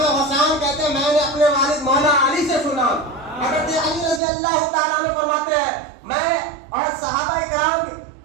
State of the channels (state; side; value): drops out; left; at 4.2 s